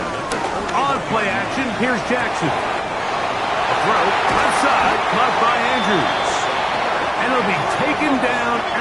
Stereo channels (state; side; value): identical; both; correlation 1.00